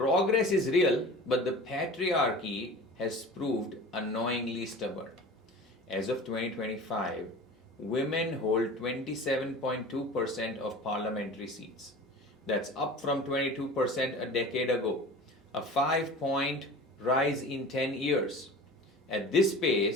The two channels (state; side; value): normal; both; correlation 0.38